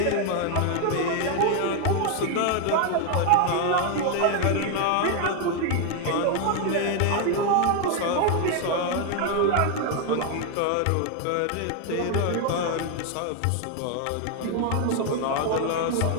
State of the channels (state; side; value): different; both; correlation 0.01